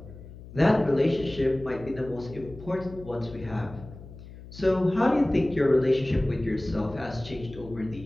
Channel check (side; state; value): left; noise; hum, 16 dB below the sound